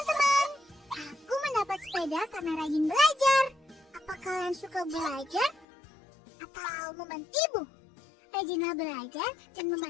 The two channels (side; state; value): right; drops out; at 5.7 s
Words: aku mendapat sepeda karena rajin belajar. Apa kalian suka belajar atau membantu ibu? Rajinlah belajar dan